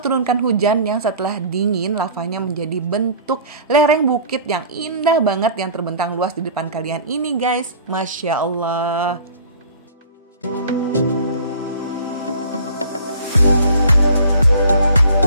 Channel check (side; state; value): both; inverted; correlation -0.46